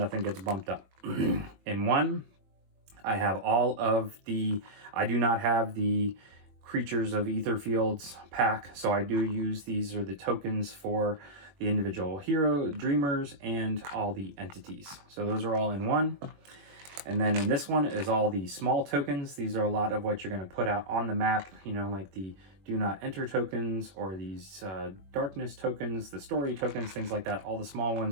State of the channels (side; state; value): left; late; 21 ms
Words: gets bumped up. In one, I have all of the, I do not have the Creatures of Etherfields pack, so I do use, these are the tokens for the individual hero, dreamers, and all the entities. So those are all in one. And then in this one is all the small tokens. These are a lot of what you're going to put out on the map, you know, like the do not enter tokens, or these darkness tokens, the story tokens, things like that. All the small